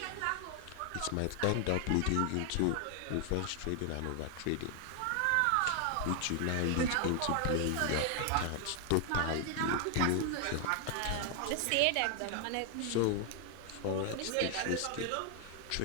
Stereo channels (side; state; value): both; different; correlation 0.00